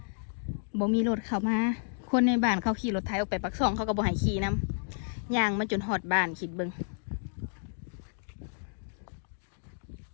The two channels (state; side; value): silent; right; digital silence